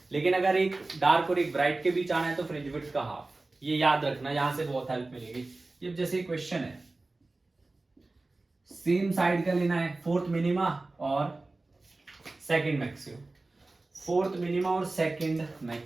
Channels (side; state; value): left; quieter; 3.2 dB